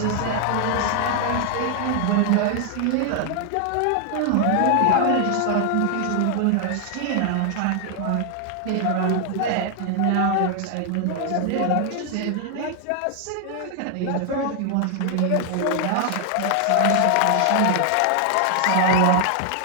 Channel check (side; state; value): both; different; correlation 0.00